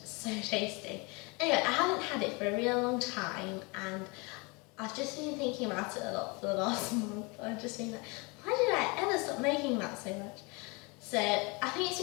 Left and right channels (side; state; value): right; quieter; 28.8 dB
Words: tasty. Anyway, I haven't had it for a real long time and I've just been thinking about it a lot for the last month. I've just been like, why did I ever stop making that so much? So I think